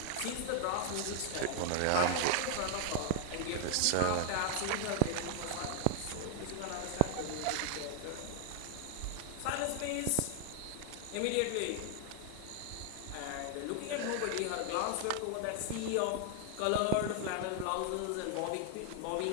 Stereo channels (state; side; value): different; both; correlation 0.00